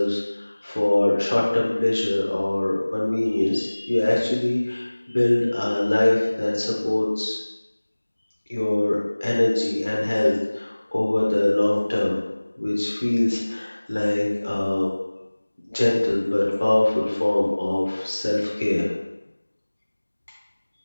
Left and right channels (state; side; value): inverted; both; correlation -1.00